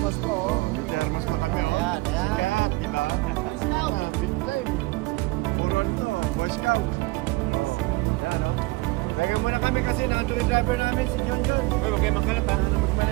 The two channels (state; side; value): quieter; left; 22.8 dB